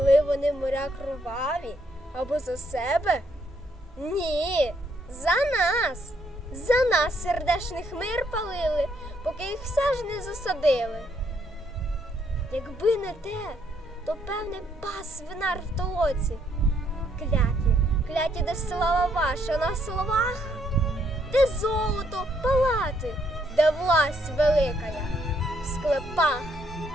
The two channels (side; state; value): both; normal; correlation 0.72